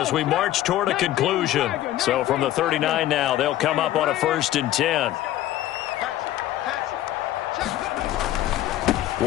we march toward a conclusion. So from the 39 now, they'll come up on a 1st and 10.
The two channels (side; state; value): right; quieter; 13.8 dB